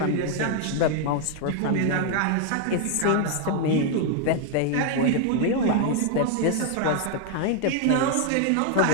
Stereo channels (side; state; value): both; different; correlation 0.00